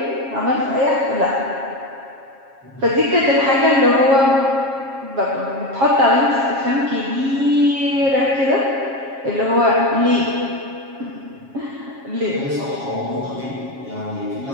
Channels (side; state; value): left; late; 7.4 ms